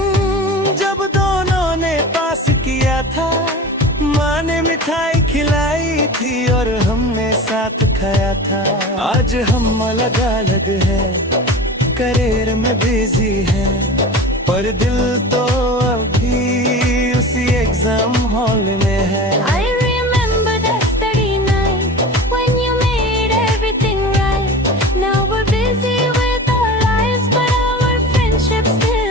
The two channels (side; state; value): both; normal; correlation 0.34